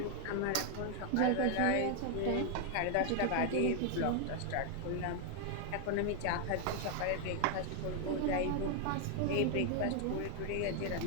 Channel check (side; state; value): both; different; correlation 0.00